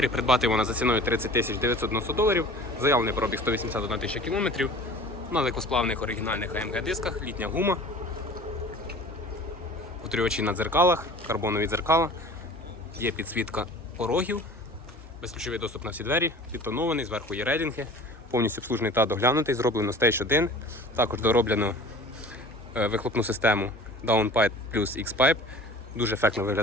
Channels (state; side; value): normal; both; correlation 0.43